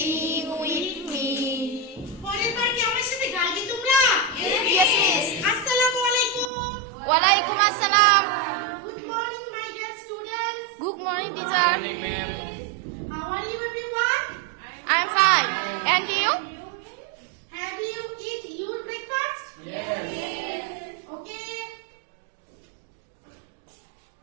with me? পরের বার কি আমার সাথে গাইবে তোমরা? Yes, miss. আসসালামু আলাইকুম। Walaikum assalam. Good morning my dear students. Good morning, teacher. How are you everyone? I'm fine. And you? Have you eat your breakfast? Yes. Okay.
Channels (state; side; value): drops out; left; at 6.5 s